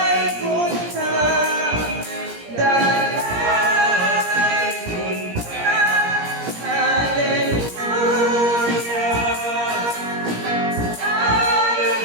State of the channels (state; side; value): late; left; 17 ms